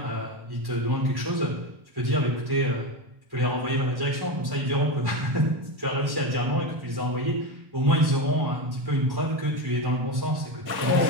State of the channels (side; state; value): left; late; 1.1 ms